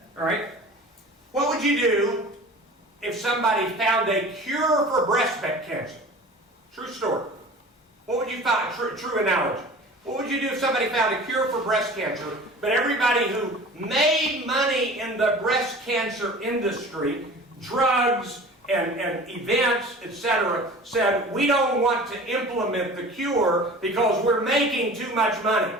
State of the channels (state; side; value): normal; both; correlation 0.41